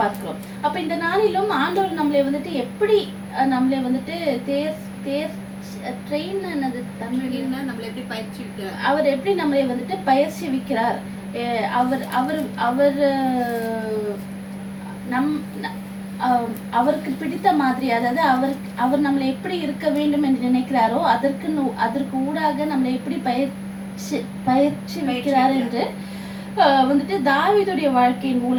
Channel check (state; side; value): identical; both; correlation 1.00